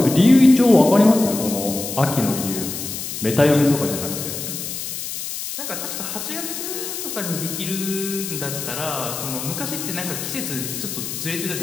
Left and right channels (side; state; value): left; noise; hiss, 6 dB below the sound